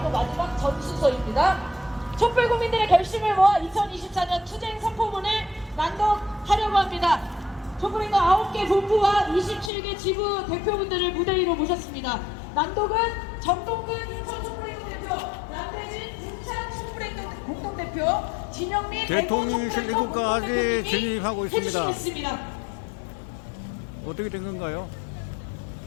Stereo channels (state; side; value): drops out; right; at 9.7 s